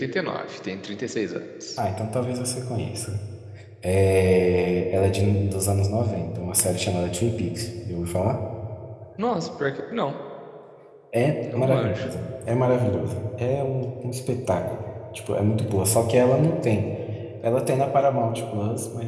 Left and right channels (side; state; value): both; identical; correlation 1.00